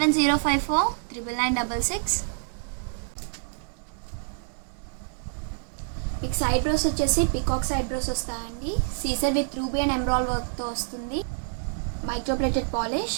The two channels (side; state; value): left; silent; digital silence